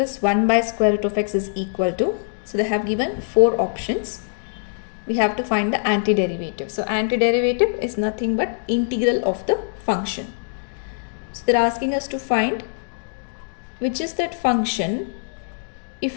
1 by square root of x is equal to, so they have given 4 options. We have to find the antiderivative. So antiderivative is nothing but integral of the function. So they're asking us to find which is that function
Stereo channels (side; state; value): right; silent; digital silence